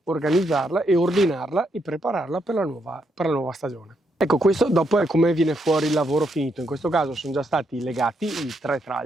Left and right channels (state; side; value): normal; both; correlation 0.78